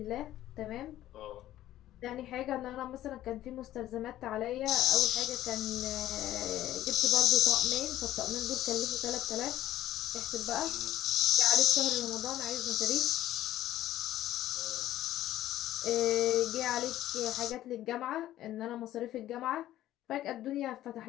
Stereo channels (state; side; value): quieter; right; 13.6 dB